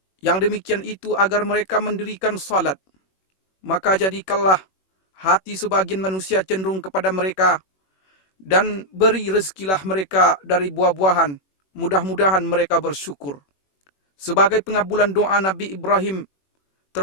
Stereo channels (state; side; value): late; right; 21 ms